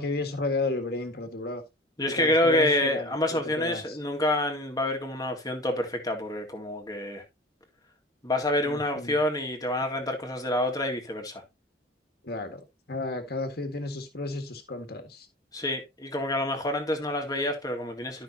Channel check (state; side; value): normal; both; correlation 0.36